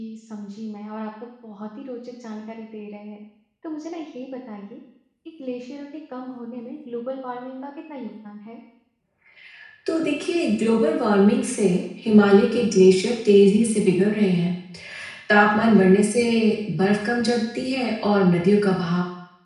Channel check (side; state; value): both; identical; correlation 1.00